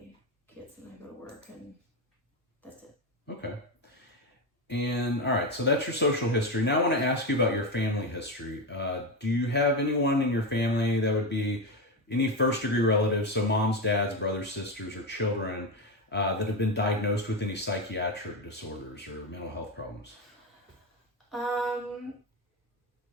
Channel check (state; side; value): normal; both; correlation 0.14